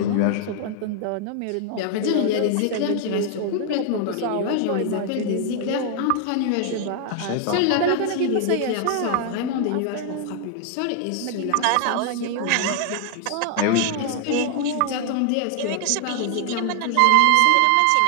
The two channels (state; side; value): different; both; correlation 0.00